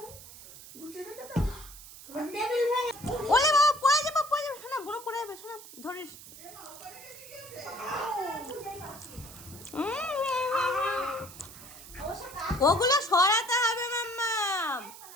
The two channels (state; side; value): noise; right; hiss, 16 dB below the sound